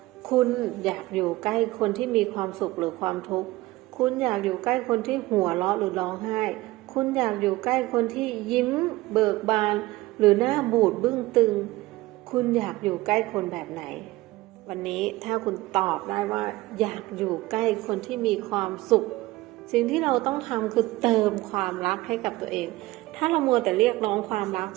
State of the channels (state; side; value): quieter; left; 19.2 dB